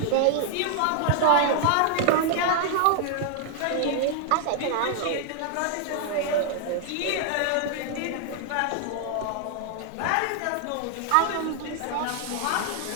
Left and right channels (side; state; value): both; different; correlation 0.00